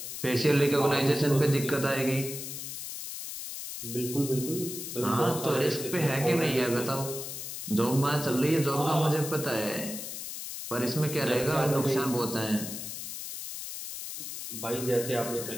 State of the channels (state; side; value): noise; left; hiss, 8 dB below the sound